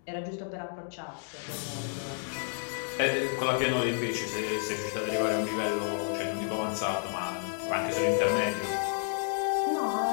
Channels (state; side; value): silent; right; 57 dB below the other